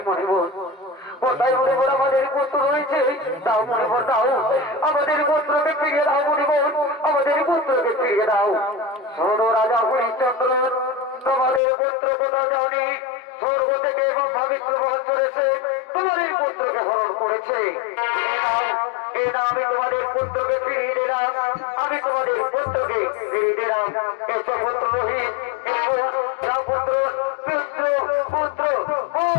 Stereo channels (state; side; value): drops out; right; at 11.6 s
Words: মনিবর, কোথায় মনিবর আমাদের পুত্র রয়েছে? দাও মনিবর দাও, আমাদের পুত্রকে ফিরিয়ে দাও মনিবর, আমাদের পুত্রকে ফিরিয়ে দাও। শোনো রাজা হরিশ্চন্দ্র, তোমাদের পুত্র কোথাও যাওনি, স্বর্গ থেকে এবং পবিত্র বহন করেছে, তোমাদের পুত্রকে হরণ করেছে। এই না আমি তোমাদের পুত্রকে ফিরিয়ে দিলাম, আমি তোমাদের পুত্রকে ফিরিয়ে দিলাম। এসো পুত্র রোহিত, এসো পুত্র পুত্র পুত্র